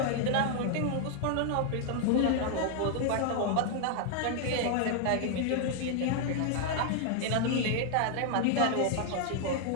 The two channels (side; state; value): both; different; correlation 0.00